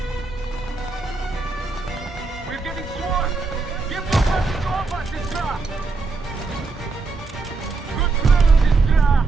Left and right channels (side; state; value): left; quieter; 4.0 dB